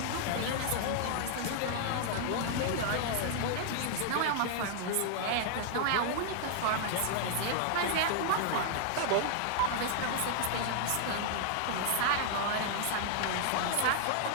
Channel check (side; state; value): both; different; correlation 0.00